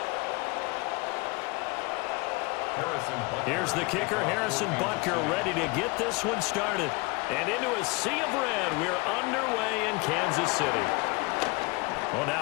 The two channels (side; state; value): right; quieter; 26.1 dB